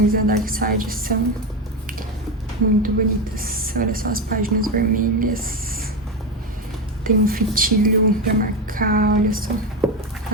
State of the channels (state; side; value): normal; both; correlation 0.14